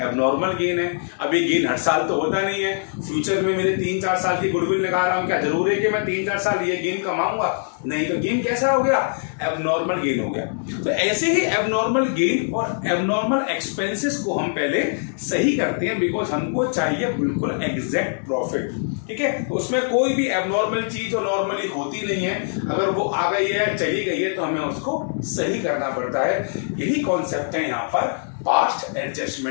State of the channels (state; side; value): silent; right; digital silence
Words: एबनॉर्मल गेन है। अब ये गेन हर साल तो होता नहीं है। फ्यूचर में मेरे 3-4 साल की गुडविल निकाल रहा हूँ, क्या जरूर है कि मैं 3-4 साल ये गेन कमाऊंगा? नहीं, तो गेन कैसा हो गया? एबनॉर्मल गेन हो गया। तो ऐसे ही एबनॉर्मल गेन और एबनॉर्मल एक्सपेंसेस को हम पहले सही करते हैं, बिकॉज हमको चाहिए बिल्कुल एग्जैक्ट प्रॉफिट। ठीक है, तो उसमें कोई भी एबनॉर्मल चीज जो नॉर्मली होती नहीं है, अगर वो आ गई है, चली गई है, तो हमें उसको सही करना पड़ता है। यही कॉन्सेप्ट है यहाँ पर पास्ट